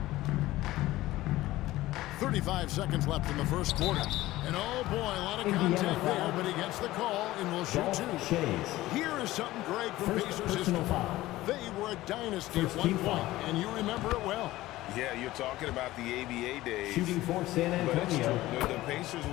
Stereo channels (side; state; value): right; quieter; 16.9 dB